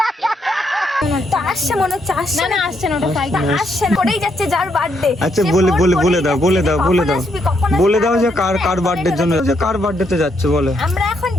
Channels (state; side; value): normal; both; correlation 0.76